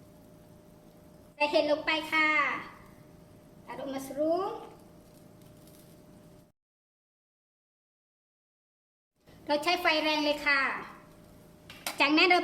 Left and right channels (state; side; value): identical; both; correlation 1.00